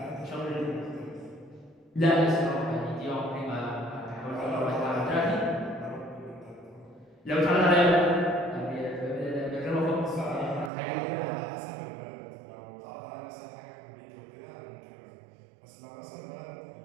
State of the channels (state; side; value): drops out; left; at 10.7 s